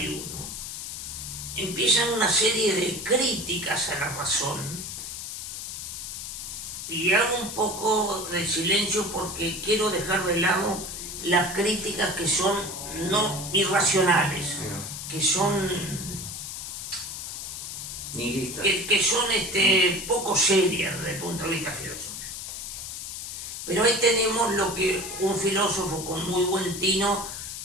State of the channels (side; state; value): left; noise; hiss, 7 dB below the sound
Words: empiezan una serie de críticas a la razón, y hago un poco de silencio porque quiero dejar de lado las críticas que son no irracionales, que son nihilistas, que son poco serias desde el punto de vista filosófico. Pero ahí tenemos lo que un filósofo con muy buen tino